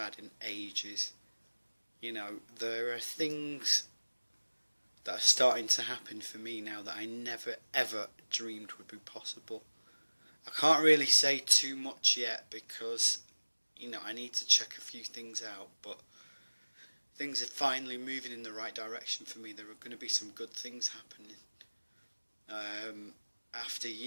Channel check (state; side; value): inverted; both; correlation -1.00